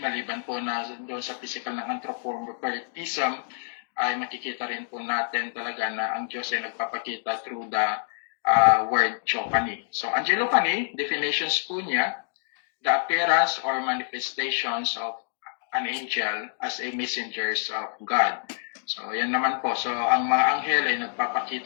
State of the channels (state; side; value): silent; right; digital silence